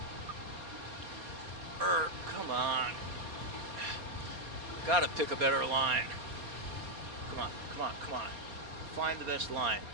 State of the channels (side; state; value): left; late; 4.3 ms